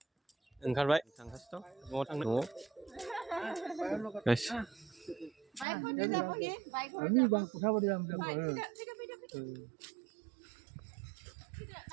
ओंखारबाय थांगासिनो दं. न'आव थांनो. न'आव. Guys. Ini bang pusat dia ambil.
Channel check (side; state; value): left; drops out; at 5.7 s